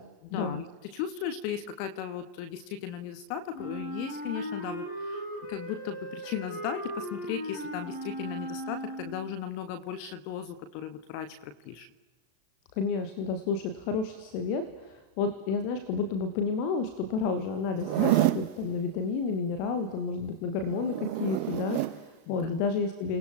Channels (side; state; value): right; late; 37 ms